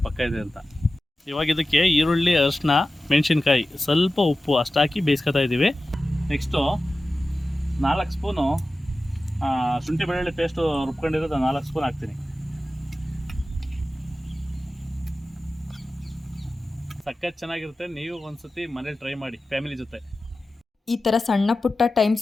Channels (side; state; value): both; normal; correlation 0.95